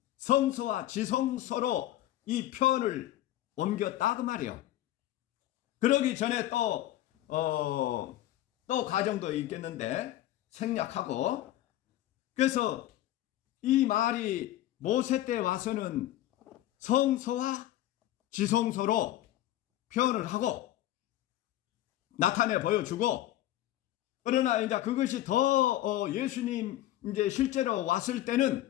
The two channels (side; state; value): right; quieter; 14.2 dB